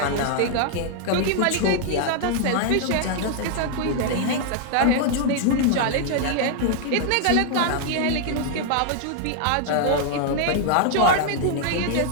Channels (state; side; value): different; both; correlation 0.00